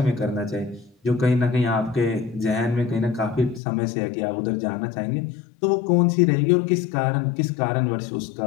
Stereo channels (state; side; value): drops out; right; at 3.6 s